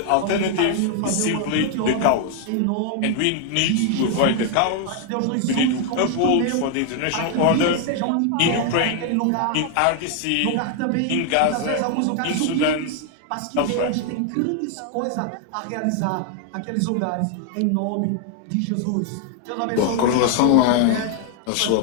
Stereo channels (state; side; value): different; both; correlation 0.00